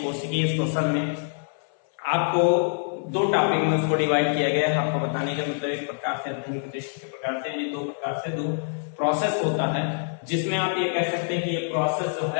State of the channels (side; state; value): right; silent; 61 dB below the other